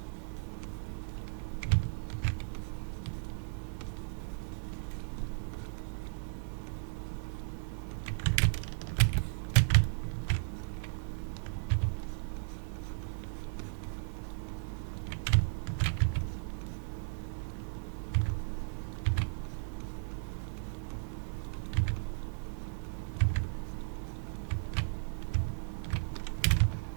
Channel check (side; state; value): left; silent; digital silence